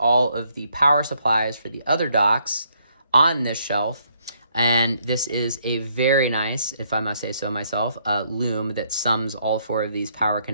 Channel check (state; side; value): inverted; both; correlation -0.71